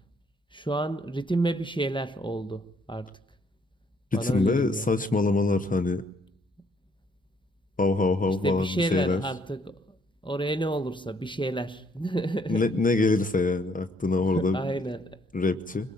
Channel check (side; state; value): both; normal; correlation 0.67